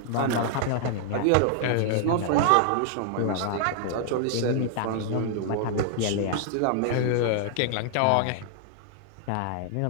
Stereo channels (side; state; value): both; different; correlation 0.00